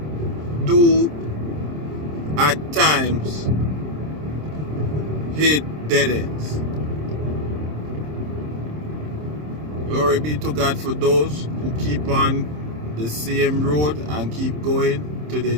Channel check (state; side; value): late; left; 26 ms